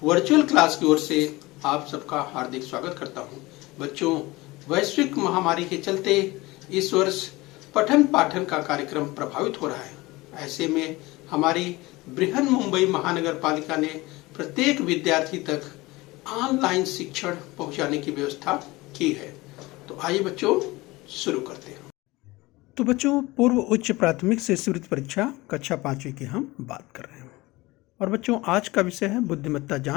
वर्चुअल क्लास की ओर से आप सबका हार्दिक स्वागत करता हूं। बच्चों, वैश्विक महामारी के चलते इस वर्ष पठन पाठन का कार्यक्रम प्रभावित हो रहा है। ऐसे में हमारी बृहन मुंबई महानगर पालिका ने प्रत्येक विद्यार्थी तक ऑनलाइन शिक्षण पहुंचाने की व्यवस्था की है। तो आइए बच्चों शुरू करते हैं। तो बच्चों, पूर्व उच्च प्राथमिक से शिष्यवृत्ति परीक्षा कक्षा 5वीं की हम बात कर रहे हैं। और बच्चों, आज का विषय है बुद्धिमत्ता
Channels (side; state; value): right; quieter; 21.1 dB